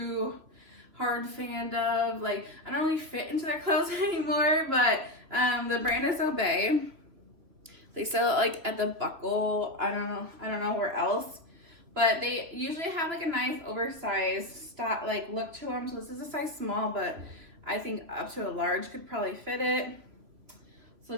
hard fan of. Like, I don't really fit into their clothes anymore, but the brand is Obey. They sell it like at the Buckle. I don't know where else, but they usually have like a nice oversized style, like look to them. So this is a size small, but I think up to a large could probably fit it. So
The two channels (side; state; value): left; late; 3.1 ms